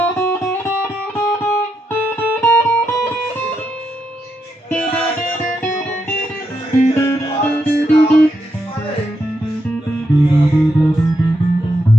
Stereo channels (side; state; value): both; normal; correlation 0.82